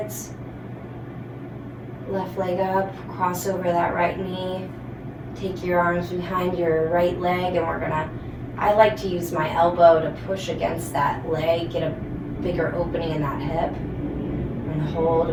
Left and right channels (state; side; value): identical; both; correlation 1.00